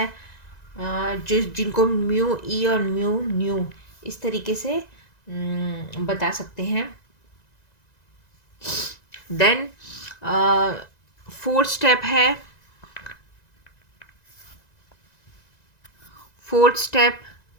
जिनको म्यू ई और म्यू न्यू इस तरीके से बता सकते हैं। देन फोर्थ स्टेप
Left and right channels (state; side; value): late; right; 1.9 ms